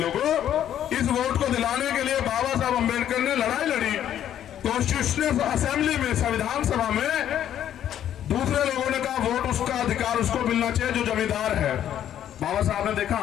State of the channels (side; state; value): right; quieter; 10.7 dB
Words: इस वोट को दिलाने के लिए बाबा साहब अम्बेडकर ने लड़ाई लड़ी कॉन्स्टिट्यूशनल असेंबली में, संविधान सभा में। दूसरे लोगों ने कहा वोट उसका अधिकार उसको मिलना चाहिए जो जमींदार है। बाबा साहब ने देखा